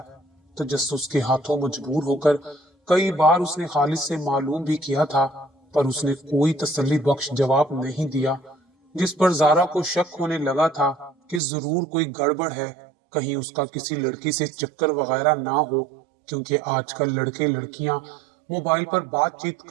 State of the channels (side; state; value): left; drops out; at 11.4 s